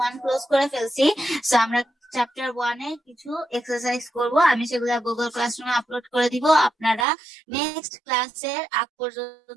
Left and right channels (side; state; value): left; drops out; at 7.1 s